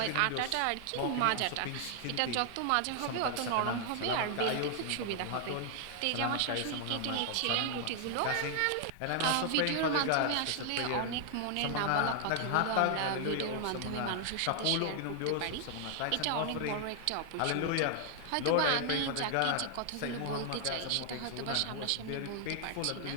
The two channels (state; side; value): different; both; correlation 0.00